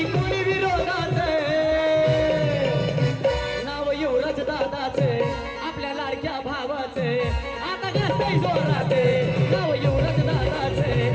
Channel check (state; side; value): identical; both; correlation 1.00